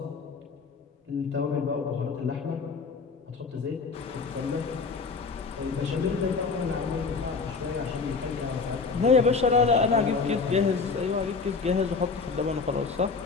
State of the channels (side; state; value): right; quieter; 4.7 dB